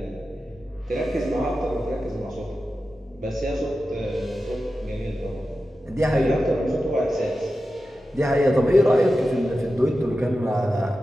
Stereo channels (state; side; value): normal; both; correlation 0.92